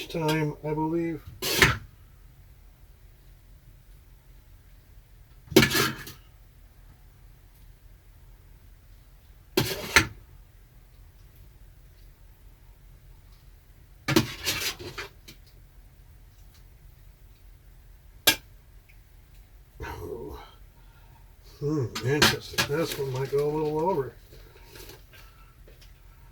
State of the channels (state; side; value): identical; both; correlation 1.00